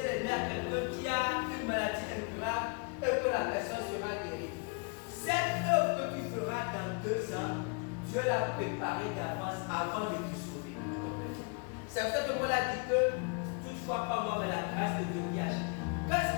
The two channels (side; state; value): right; quieter; 35.4 dB